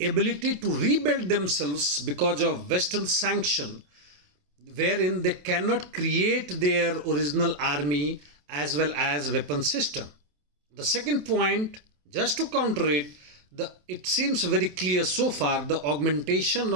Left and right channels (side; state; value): left; late; 27 ms